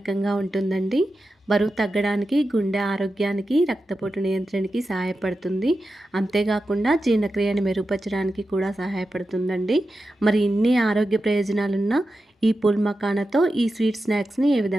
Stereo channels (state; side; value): normal; both; correlation 0.91